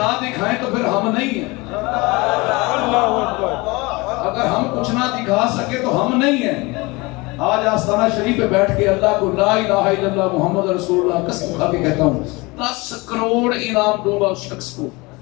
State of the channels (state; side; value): quieter; right; 24.5 dB